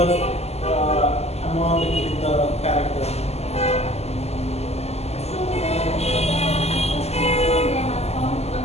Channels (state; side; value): late; right; 0.30 ms